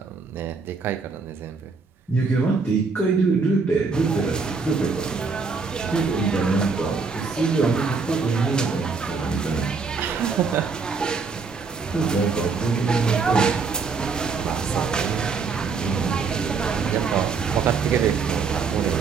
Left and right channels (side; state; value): left; quieter; 4.8 dB